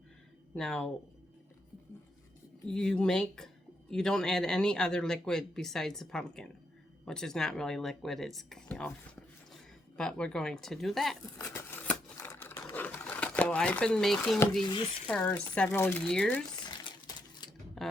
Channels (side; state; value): both; normal; correlation 0.78